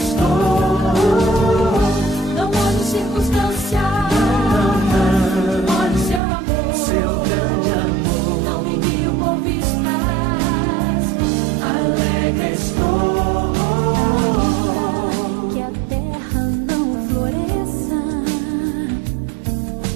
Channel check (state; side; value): drops out; left; at 6.2 s